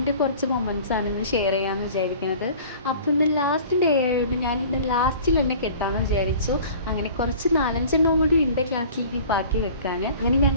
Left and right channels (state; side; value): inverted; both; correlation -0.45